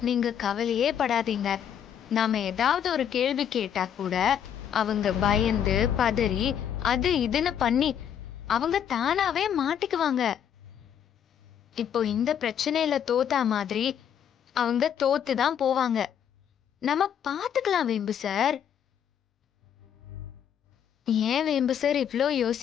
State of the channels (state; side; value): quieter; right; 9.0 dB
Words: நீங்க கவலையே படாதீங்க. நாம ஏதாவது ஒரு கேள்வி கேட்டா கூட அவங்க பயந்து பதறி அது இதுன்னு பண்ணி அவங்க தானாவே மாட்டிக்குவாங்க. இப்போ இந்த பிரச்சனையில தோத்தா மாதிரி அவங்க தோத்துதான் போவாங்க. நம்ம பாத்துக்கலாம் வேம்பு சார். ஏன் வேம்பு சார் இவ்ளோ